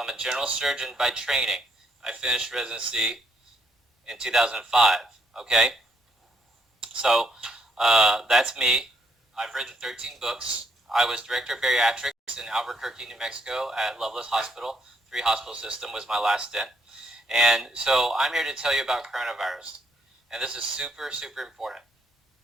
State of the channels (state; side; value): normal; both; correlation 0.71